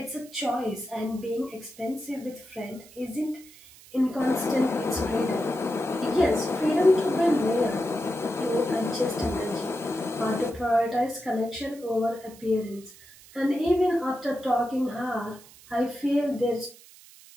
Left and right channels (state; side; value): noise; right; hiss, 22 dB below the sound